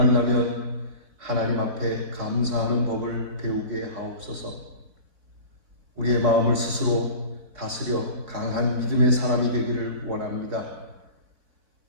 하나님 앞에 감사하는 법을 배우게 하옵소서. 우리의 마음을 스스로 다스려 강한 믿음의 사람이 되기를 원합니다.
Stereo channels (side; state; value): left; late; 3.7 ms